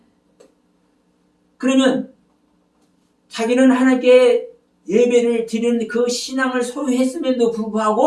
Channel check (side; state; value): both; identical; correlation 1.00